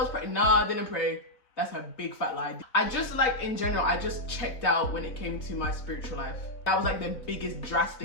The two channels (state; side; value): late; right; 4.0 ms